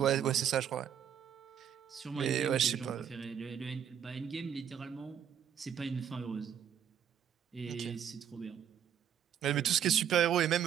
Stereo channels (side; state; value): left; quieter; 9.0 dB